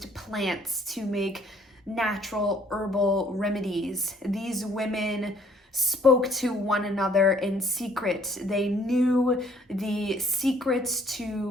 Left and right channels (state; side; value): normal; both; correlation 0.61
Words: plants to make natural herbal remedies. These women spoke to one another in secret. They knew the secrets